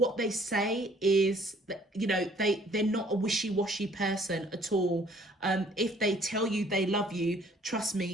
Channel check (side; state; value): both; normal; correlation 0.59